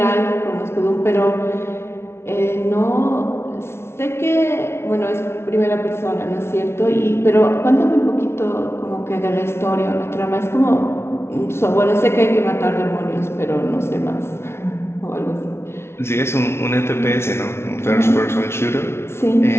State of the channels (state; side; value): late; right; 0.12 ms